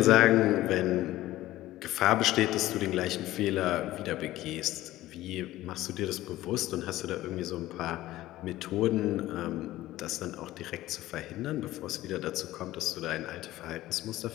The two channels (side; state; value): right; quieter; 15.8 dB